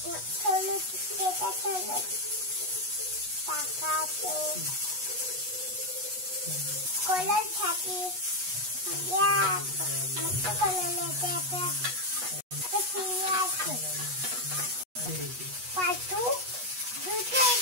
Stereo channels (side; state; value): left; late; 8.2 ms